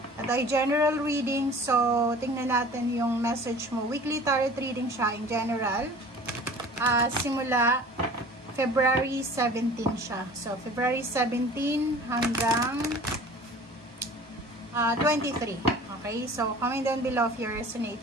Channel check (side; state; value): both; normal; correlation 0.44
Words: At ay general reading, so tingnan natin yung message mo. Weekly tarot reading siya in general. Simula February 17 siya. So February 17 hanggang 23. Okay, so comment down below if you